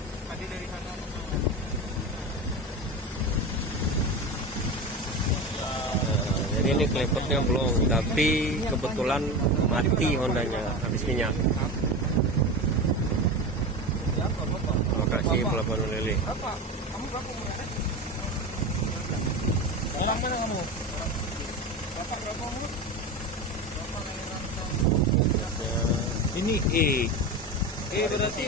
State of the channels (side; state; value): both; normal; correlation 0.24